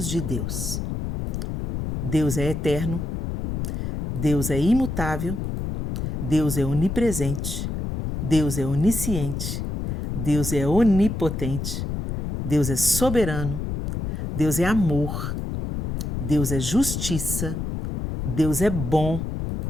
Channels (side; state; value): left; noise; rumble, 3 dB below the sound